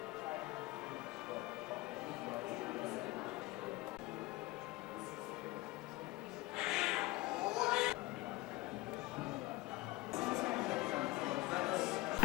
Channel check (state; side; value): quieter; right; 19.7 dB